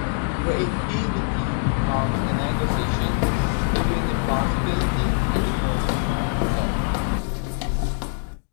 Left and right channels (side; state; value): right; silent; digital silence